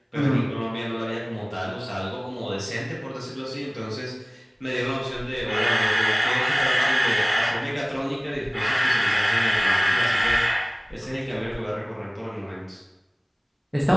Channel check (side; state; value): both; identical; correlation 1.00